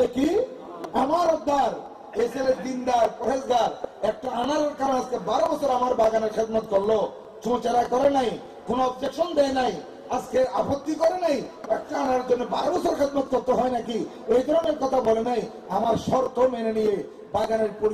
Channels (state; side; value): identical; both; correlation 1.00